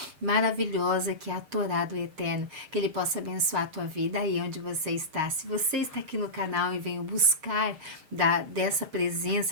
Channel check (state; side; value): late; left; 6.5 ms